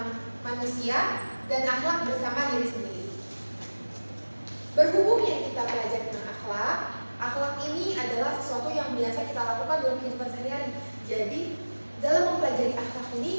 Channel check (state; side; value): inverted; both; correlation -1.00